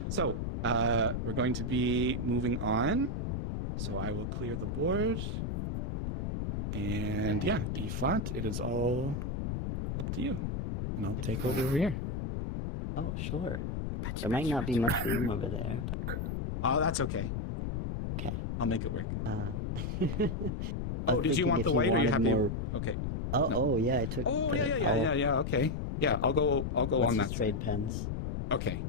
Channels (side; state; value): left; noise; rumble, 2 dB below the sound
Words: so we're going to be moving on. So I will clear the board. And yeah, E flat, it is all up to you. And I'll take over here. Oh, sure. There might not be much room over there. But... Oh, that's okay. Okay. I'll make it work. I Oh, was did you thinking want if the white or you wanted happy? more... Okay. Oh, No. oh, yeah, I took. Oh, the- yeah. Okay. Yeah, I'll go Let's on just that. trade pens. Okay,